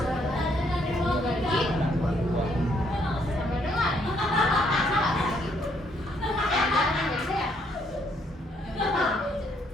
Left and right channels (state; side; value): normal; both; correlation 0.70